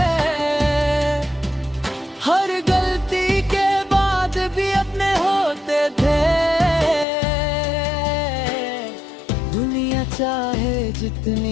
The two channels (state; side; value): drops out; right; at 7.1 s